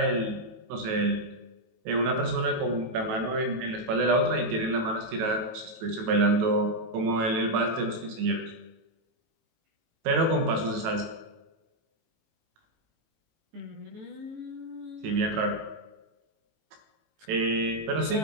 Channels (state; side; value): late; left; 18 ms